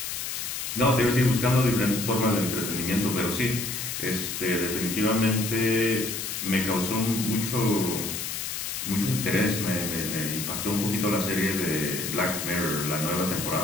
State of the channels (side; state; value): left; noise; hiss, 4 dB below the sound